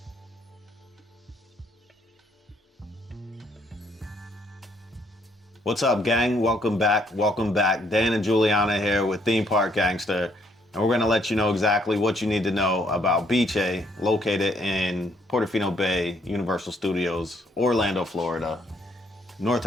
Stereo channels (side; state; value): both; normal; correlation 0.69